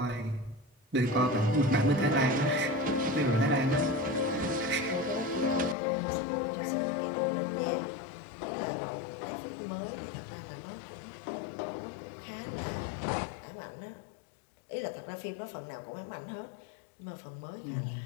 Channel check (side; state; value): right; drops out; at 5.8 s